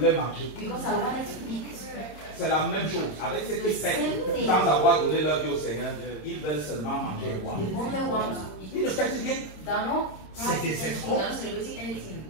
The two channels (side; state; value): right; late; 26 ms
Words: manger. because I wanted to eat. C'est la même chose avec ceux qui fêtent sans avoir donné leur vie au Seigneur. Ils veulent seulement manger et boire. They only want to eat. Ils ne fêtent rien. They're not C'est partying des anything. escrocs. They're not celebrating anything.